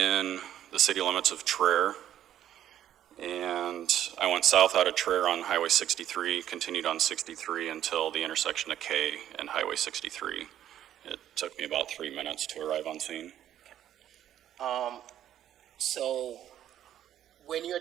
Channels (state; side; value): quieter; left; 11.2 dB